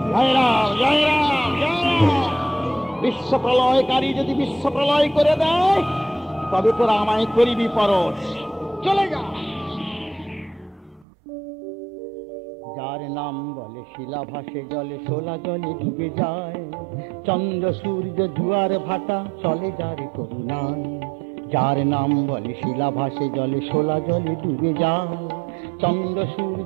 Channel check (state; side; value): drops out; left; at 11.1 s